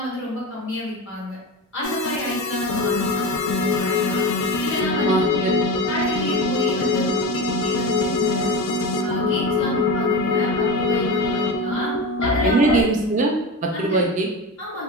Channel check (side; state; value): both; normal; correlation 0.24